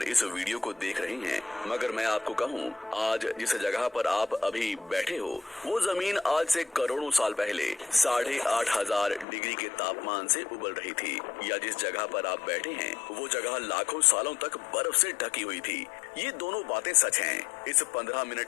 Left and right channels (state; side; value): drops out; right; at 9.2 s